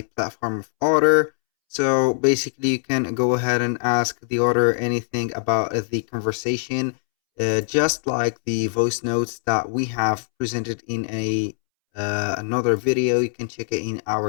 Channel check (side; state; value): right; silent; 64 dB below the other